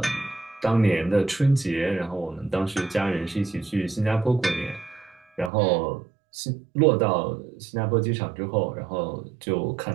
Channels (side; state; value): left; drops out; at 5.5 s